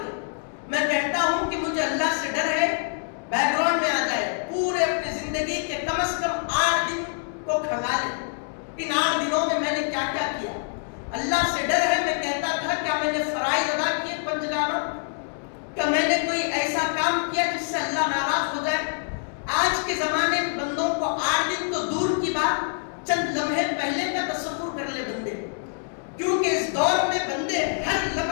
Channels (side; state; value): right; silent; digital silence